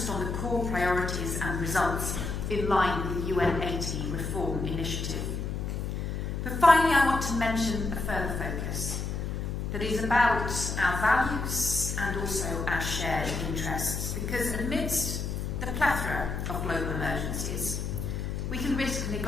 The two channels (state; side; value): noise; left; hum, 3 dB below the sound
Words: on the core priorities and results in line with the UN 80 reform initiative. But finally, I want to mention a further focus that is about our values and also our shared interests, because amidst the plethora of global emergencies, we can risk